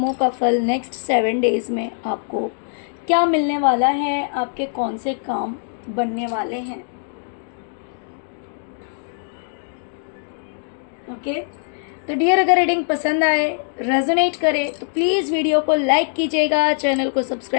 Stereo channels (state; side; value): silent; right; digital silence